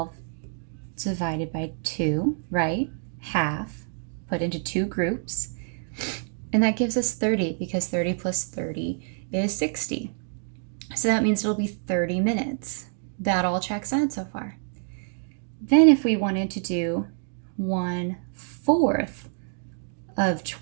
divided by 2, right? Half, put into 2 groups. And that gives us 30, because 30 plus 30 is 60. So that means it'll be 30 minutes. That all checks out so far. Then if we wanted to do 1/4 of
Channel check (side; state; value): left; silent; 60 dB below the other